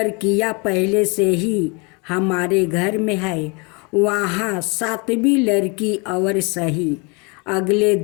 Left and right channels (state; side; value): quieter; right; 31.2 dB